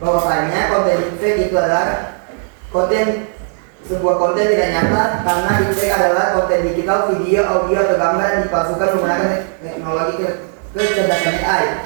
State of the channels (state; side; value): silent; left; 63 dB below the other